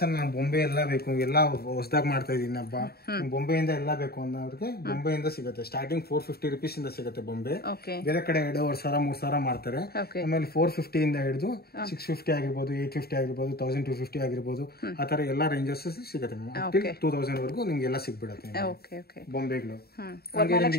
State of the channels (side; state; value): right; late; 0.45 ms